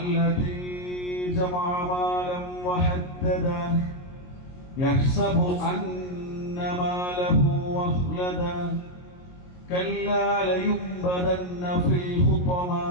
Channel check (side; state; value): right; late; 22 ms